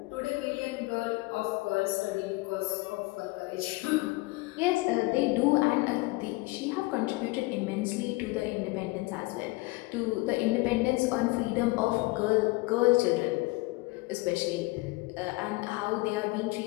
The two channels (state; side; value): quieter; right; 23.1 dB